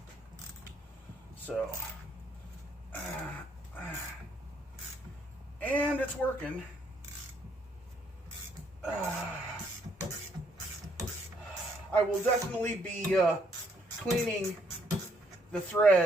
So, and it's working. I will definitely be cleaning the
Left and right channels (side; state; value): both; normal; correlation 0.70